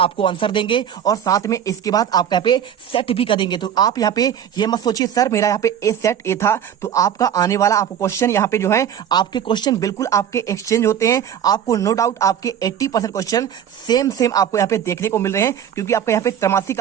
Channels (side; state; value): left; quieter; 9.4 dB